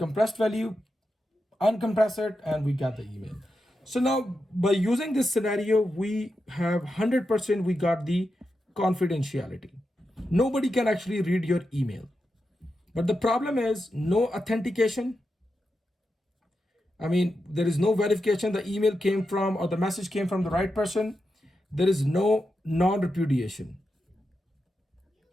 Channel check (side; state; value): both; normal; correlation 0.88